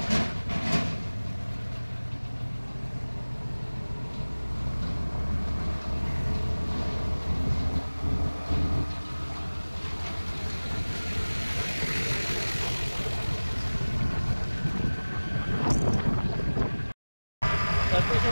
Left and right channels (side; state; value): both; inverted; correlation -1.00